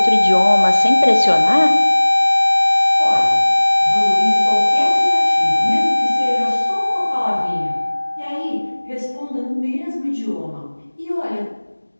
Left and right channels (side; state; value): both; inverted; correlation -1.00